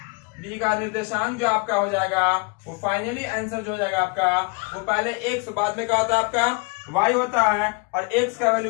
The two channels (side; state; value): right; quieter; 31.7 dB